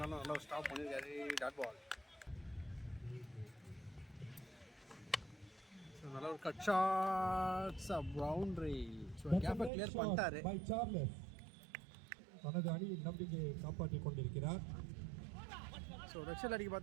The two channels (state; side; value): drops out; left; at 9.7 s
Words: நல்லா ஒரு ஸ்டாப் பண்ணியிருக்காரு. Dot ball. ஸோ நல்ல ஒரு கட் ஷாட்ஸ் பவுண்டரி. ஸோ கேப்பை கிளியர் பண்ணிட்டாரு. தனது அணியின் நம்பிக்கையை காப்பாற்றிக் கொண்டிருக்கிறார். ஸோ ரெக்ஷல் அடிக்க